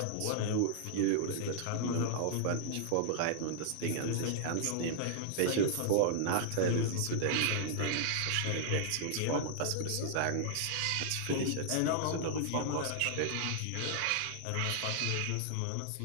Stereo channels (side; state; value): both; different; correlation -0.01